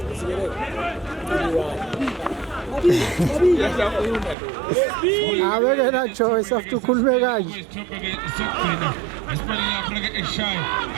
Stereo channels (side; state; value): left; drops out; at 4.4 s